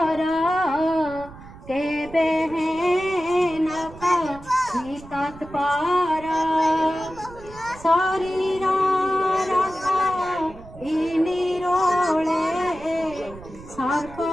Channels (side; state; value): right; noise; rumble, 18 dB below the sound